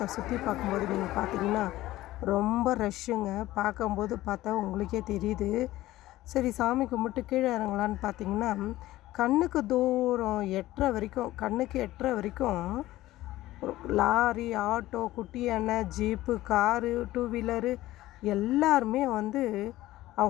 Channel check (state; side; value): quieter; right; 16.2 dB